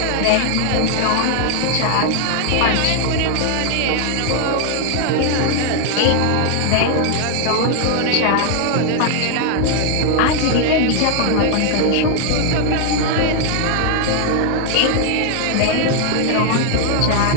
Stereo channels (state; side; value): different; both; correlation 0.00